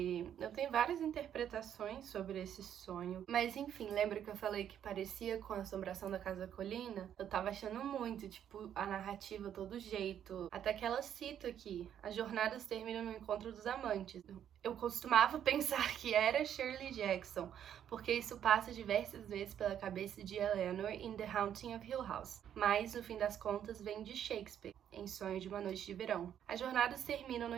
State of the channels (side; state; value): left; quieter; 9.7 dB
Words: eu tenho várias interpretações sobre esse sonho. Mas enfim, lembra que eu falei que parecia com a Assombração da Casa Colina? Eu tava achando muito, tipo, a narrativa, todo jeito. Até que ela cita aqui, as jornadas terminam no encontro dos amantes. Eu costumava pensar que era Shirley Jackson, porque isso passa diversas vezes pela cabeça de Eleanor em The Haunting of Hill House. Mas, no fim das contas, vem de Shakespeare, em Sonho de uma Noite de Verão. As jornadas terminam no